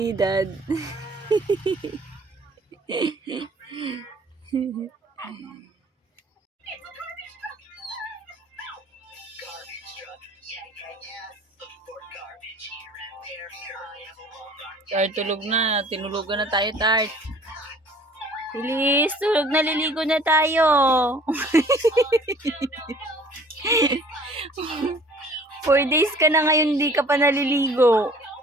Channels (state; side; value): normal; both; correlation 0.52